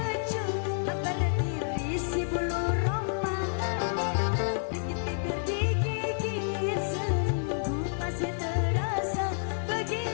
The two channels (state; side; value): silent; right; 58 dB below the other